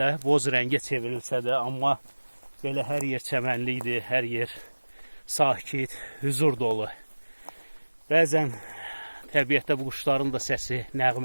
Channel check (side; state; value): both; inverted; correlation -1.00